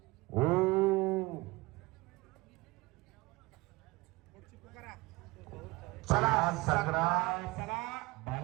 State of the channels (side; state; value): left; quieter; 22.5 dB